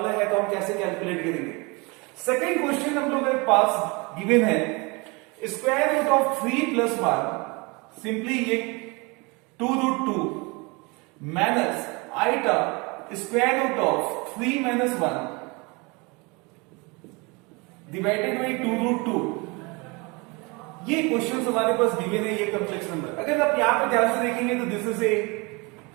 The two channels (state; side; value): quieter; left; 27.7 dB